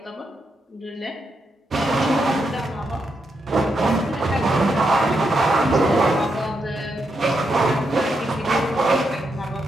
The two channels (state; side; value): normal; both; correlation 0.82